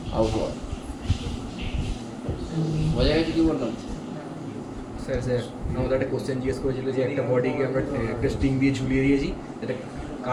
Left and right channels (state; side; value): identical; both; correlation 1.00